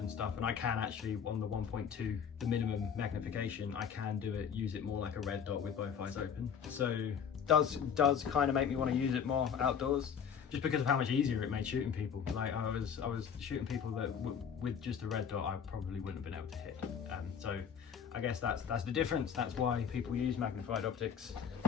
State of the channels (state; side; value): quieter; right; 7.5 dB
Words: stuff. And I can actually, on the 1.2, the minimum magnification, I can use it more like a red dot with both eyes open. So does kind of make me want to use it more outdoors, just because of how much easier it made shooting people. Like I was shooting people that with just a red dot I probably wouldn't have been able to hit. So I guess that's the difference. That's why people use magnified optics.